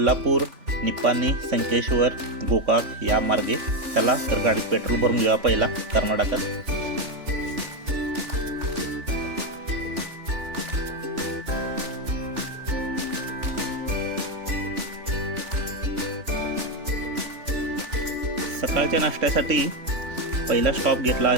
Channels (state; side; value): late; left; 3.4 ms